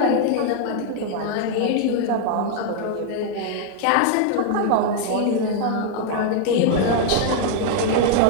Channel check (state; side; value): different; both; correlation 0.00